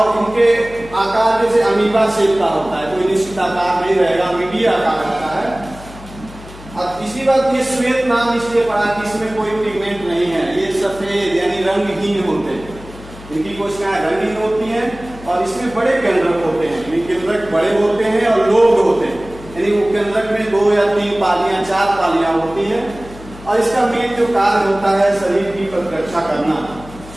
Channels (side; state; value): left; noise; hum, 17 dB below the sound